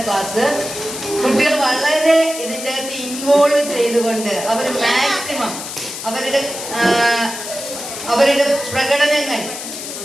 ക്ലാസ്. കുട്ടികൾ വളരെ ഇതിൻ്റെ അകത്ത് ഇൻവോൾവ് ചെയ്തുകൊണ്ട് അവർ മാക്സിമം അവരുടെ പ്രകടനങ്ങൾ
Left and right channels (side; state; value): left; noise; hiss, 8 dB below the sound